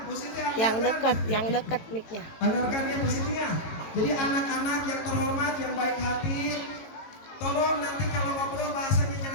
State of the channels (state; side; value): late; right; 18 ms